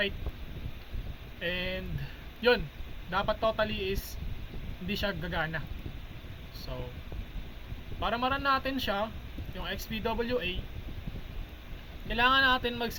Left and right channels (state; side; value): identical; both; correlation 1.00